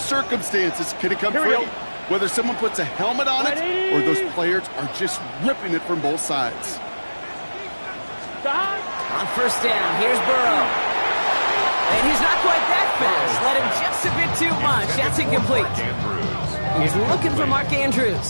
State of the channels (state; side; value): inverted; both; correlation -1.00